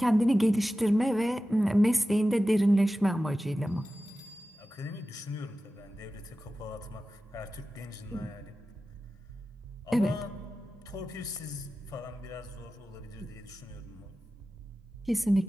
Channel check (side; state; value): both; normal; correlation 0.94